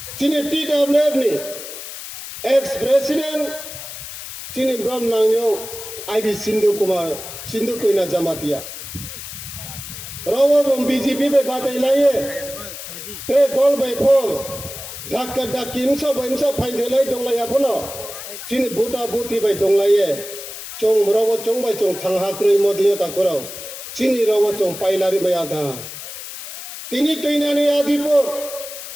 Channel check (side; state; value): left; noise; hiss, 10 dB below the sound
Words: চিনি টিডব্লিউএফ নি এক্স প্রেসিডেন্ট চিনি ব্রহ্মনাংयो আইবি সিন্ধু কুমার সিন্ধু কইনা জামাতিয়া রওবম বিজেপি বে বাতাই লাইয়ে তে দল বে ফম ধাক্কা ধাক্কি ইমসো ফাইন্দেলাই দংলাইয়া ফনো চিনি বুটা বুতি bai donglaye chong rawo chong bai chong thangha krui modiya takuraw chini rawo chong pailari bai adha tini toinani adipo